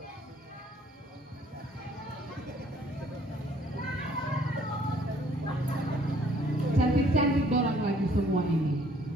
Cantik-cantik dorang lagi semua ini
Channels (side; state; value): both; normal; correlation 0.60